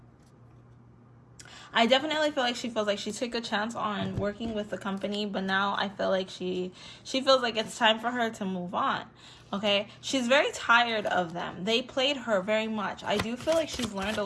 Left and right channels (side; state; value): both; identical; correlation 1.00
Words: I definitely feel like she feels like she took a chance on working with the company, but now I feel like she feels like it's time for her to move on, okay? She's very tired of them. They played her very much. I do feel like she's learned a